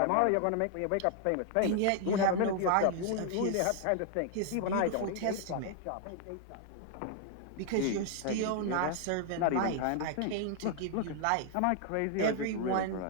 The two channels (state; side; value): different; both; correlation 0.00